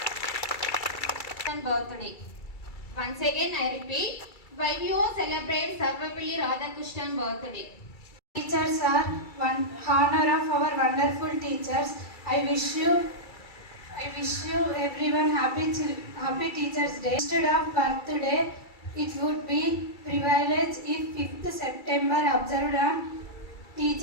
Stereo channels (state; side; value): late; right; 2.3 ms